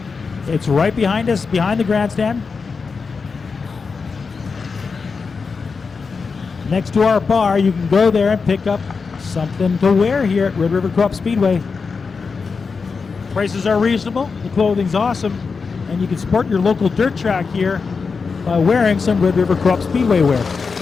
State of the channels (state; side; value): quieter; right; 5.0 dB